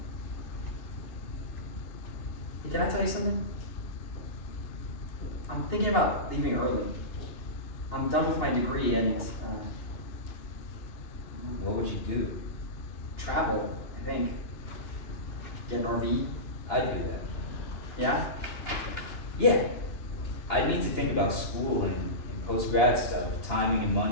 Hey, can I tell you something? I'm thinking about leaving early. I'm done with my degree and What would you do? travel, I think. Get an RV. I'd do that. Yeah? Yeah. I'd need to think about school and post-grad stuff, timing and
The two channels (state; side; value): late; right; 2.9 ms